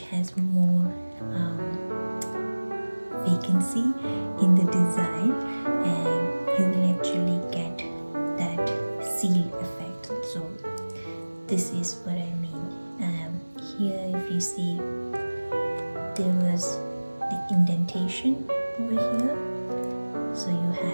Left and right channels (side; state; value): both; inverted; correlation -1.00